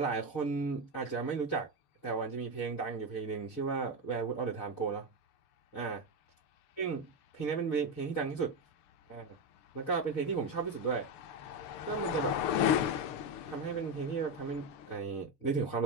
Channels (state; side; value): late; right; 6.7 ms